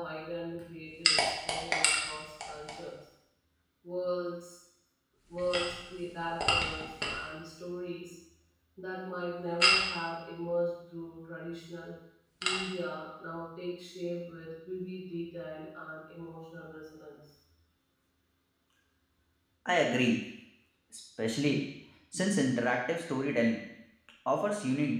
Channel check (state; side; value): identical; both; correlation 1.00